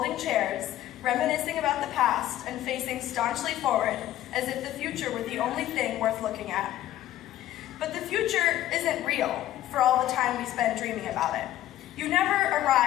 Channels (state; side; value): quieter; right; 13.5 dB